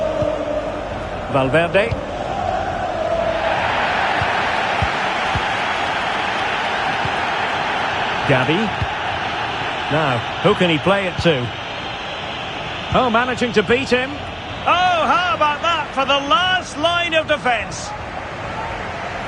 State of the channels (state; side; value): identical; both; correlation 1.00